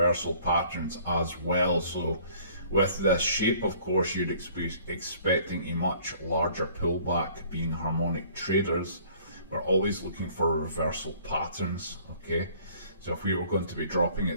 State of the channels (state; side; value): inverted; both; correlation -0.55